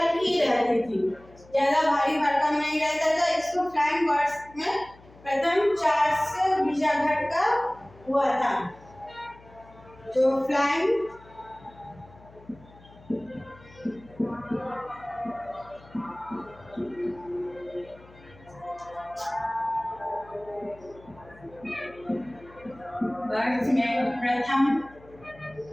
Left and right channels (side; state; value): left; noise; hum, 23 dB below the sound